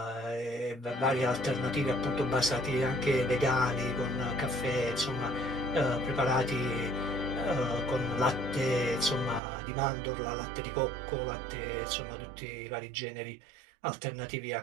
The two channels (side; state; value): left; drops out; at 9.4 s